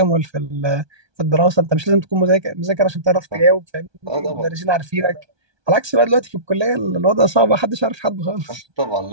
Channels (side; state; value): left; late; 1.2 ms